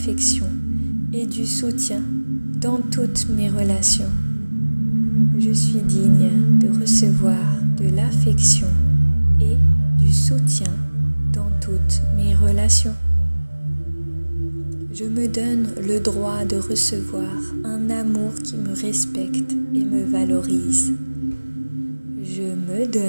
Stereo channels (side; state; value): both; inverted; correlation -1.00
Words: et du soutien dans toutes mes relations. Je suis digne de recevoir de l'affection et du soutien dans toutes mes relations. Je me donne le droit de recevoir un amour qui me respecte et me valorise. Je me